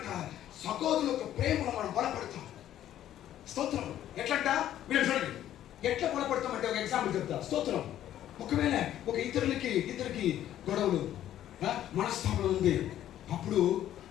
సహోదరుల యొక్క ప్రేమలో మనం బలపడతాం. స్తోత్రం. ఎట్లంట మీరు చూడండి. ఎట్లా బలపడతామంటే ఒక ఎగ్జాంపుల్ చెప్తా. స్తోత్రం. ఒకవేళ ఒక ఇద్దరికి గొడవలు మనస్తాపం ఉంది. అప్పుడు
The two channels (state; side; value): quieter; right; 11.9 dB